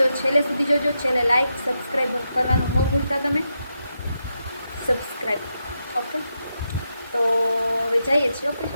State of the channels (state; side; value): inverted; both; correlation -0.85